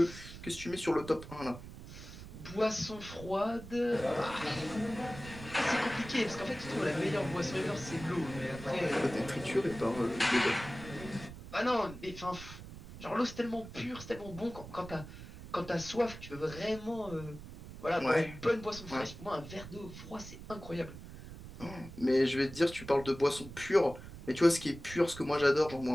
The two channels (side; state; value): right; noise; rumble, 14 dB below the sound